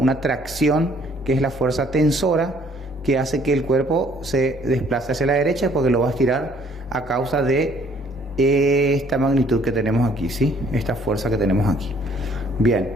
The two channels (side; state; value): both; normal; correlation 0.61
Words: tracción, que es la fuerza tensora, que hace que el cuerpo se desplace hacia la derecha porque lo va a estirar a causa de esta magnitud que tenemos aquí, ¿sí?, esta fuerza que tenemos aquí. Bien,